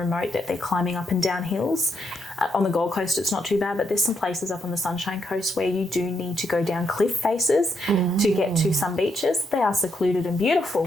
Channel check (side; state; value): both; normal; correlation 0.78